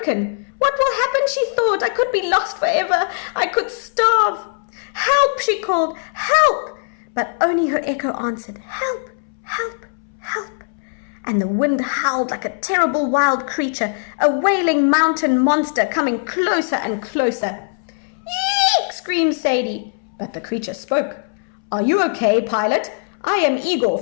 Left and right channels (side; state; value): right; silent; 65 dB below the other